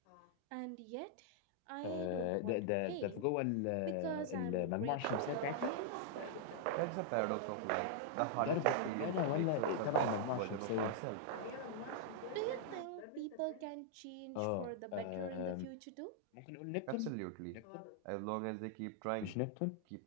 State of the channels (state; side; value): different; both; correlation -0.01